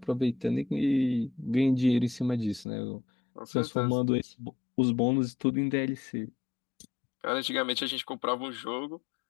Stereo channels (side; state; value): right; drops out; at 2.7 s